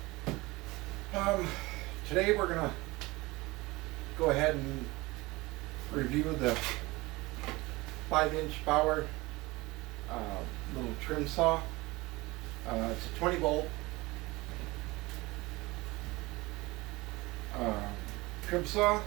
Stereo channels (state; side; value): quieter; left; 21.8 dB